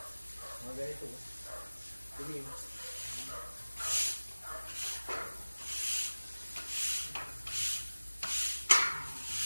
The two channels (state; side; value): inverted; both; correlation -1.00